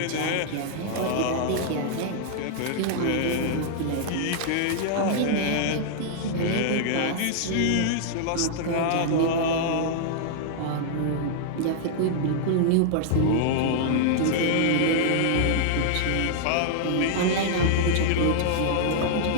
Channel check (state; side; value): different; both; correlation -0.01